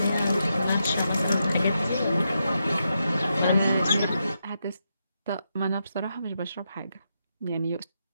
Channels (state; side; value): inverted; both; correlation -0.84